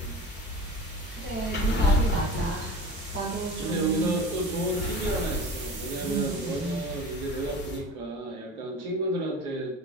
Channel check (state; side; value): normal; both; correlation 0.35